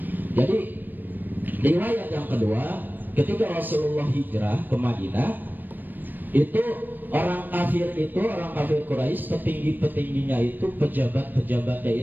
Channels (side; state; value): left; late; 0.090 ms